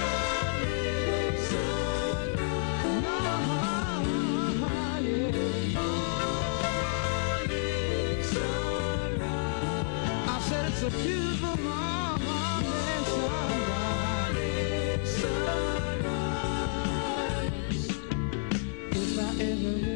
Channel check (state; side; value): silent; right; digital silence